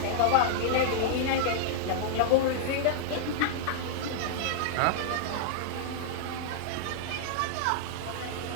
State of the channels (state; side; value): different; both; correlation -0.01